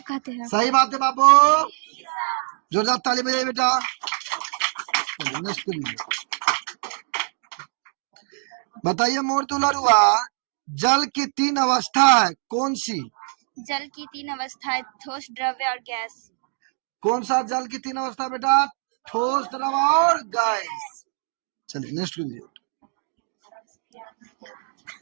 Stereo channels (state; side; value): silent; left; digital silence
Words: कहते हैं। सही बात है बाबू, जोरदार ताली बजाइए बेटा। बताइए मोर दुलरुआ, जल की तीन अवस्था है, कौन सी? जल की तीन अवस्थाएं, ठोस, द्रव्य और गैस। कौन सा जल की तीन अवस्था बेटा? ठोस, द्रव और गैस। चलिए नेक्स्ट कीजिए।